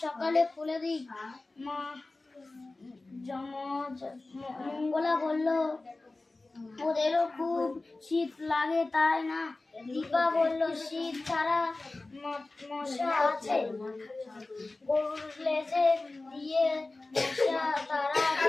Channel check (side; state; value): right; quieter; 3.2 dB